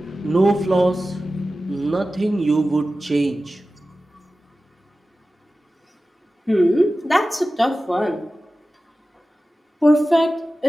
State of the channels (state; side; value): normal; both; correlation 0.95